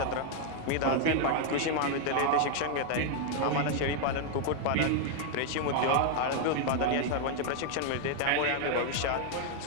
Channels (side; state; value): both; different; correlation 0.00